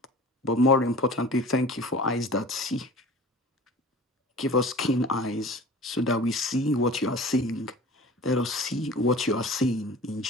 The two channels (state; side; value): normal; both; correlation 0.41